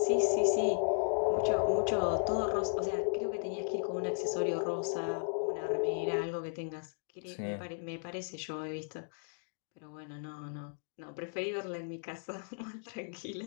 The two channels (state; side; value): silent; right; digital silence